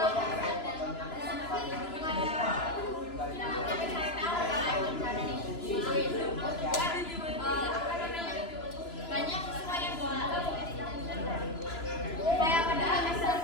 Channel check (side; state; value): right; late; 2.9 ms